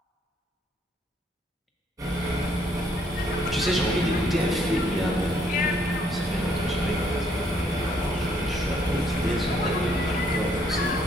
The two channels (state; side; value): normal; both; correlation 0.68